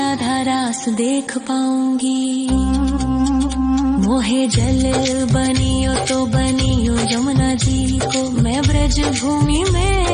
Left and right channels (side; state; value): both; identical; correlation 1.00